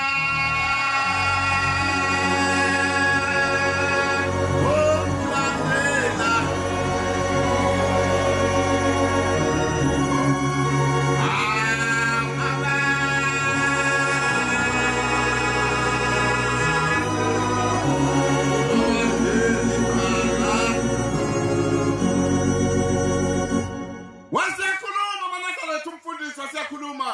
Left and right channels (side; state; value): both; identical; correlation 1.00